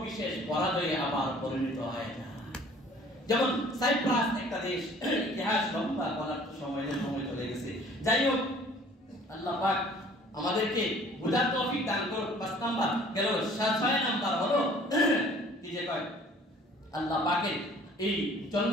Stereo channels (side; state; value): both; normal; correlation 0.52